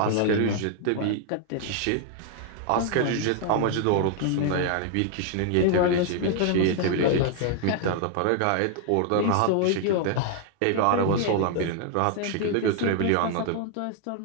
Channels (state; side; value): different; both; correlation 0.00